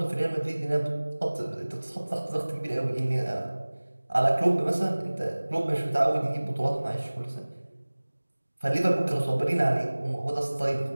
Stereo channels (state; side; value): inverted; both; correlation -1.00